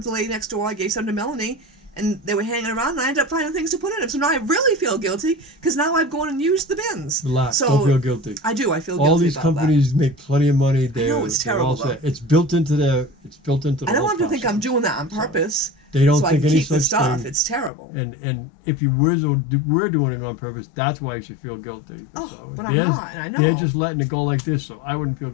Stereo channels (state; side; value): drops out; right; at 17.7 s